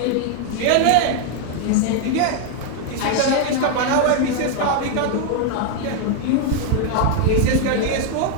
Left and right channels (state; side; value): different; both; correlation 0.00